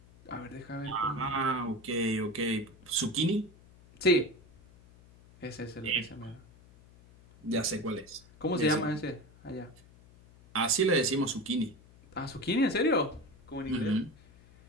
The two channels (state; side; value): noise; left; hum, 24 dB below the sound